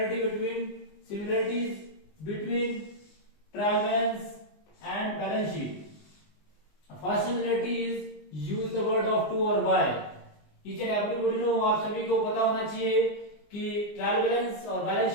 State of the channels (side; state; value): right; late; 20 ms